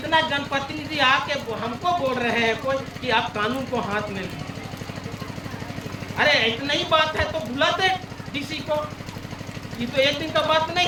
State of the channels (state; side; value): identical; both; correlation 1.00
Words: जनप्रतिनिधि आके हमको बोल रहे हैं कोई कि आप कानून को हाथ में लीजिए। अरे इतना ही बात है तो बुलाते डीसी को, ये तो एक दिन का बात नहीं